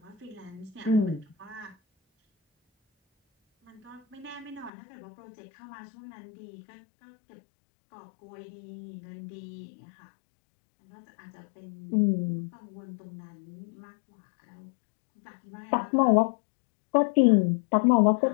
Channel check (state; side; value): drops out; right; at 4.7 s